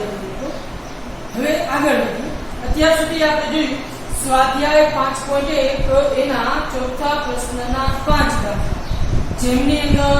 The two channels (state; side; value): identical; both; correlation 1.00